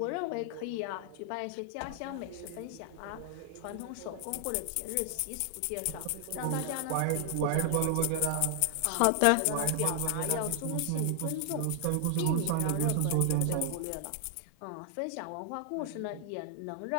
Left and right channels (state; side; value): different; both; correlation 0.00